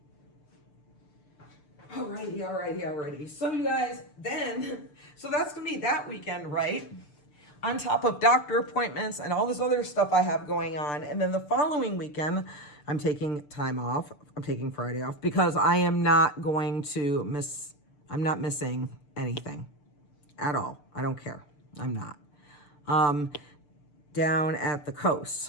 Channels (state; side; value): late; right; 6.8 ms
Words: Alrighty. So you guys, so that's going to be that weekend, right? On top of doctor appointments and all this other stuff I have going on. And then the following weekend, I'm taking time off. I'm taking Friday off because I am not going to I'm not missing anything at all. I don't care. I'm not. Down at the coast.